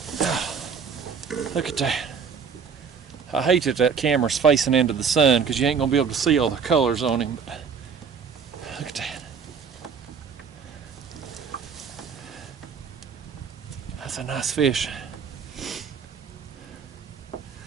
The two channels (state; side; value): quieter; left; 6.2 dB